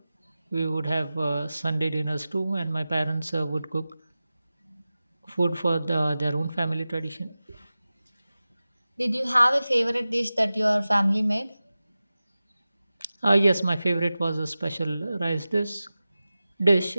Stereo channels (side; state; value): both; inverted; correlation -0.96